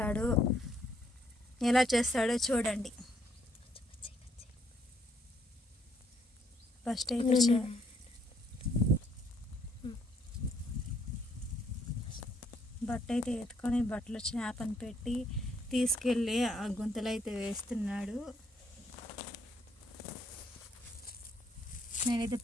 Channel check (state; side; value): normal; both; correlation 0.70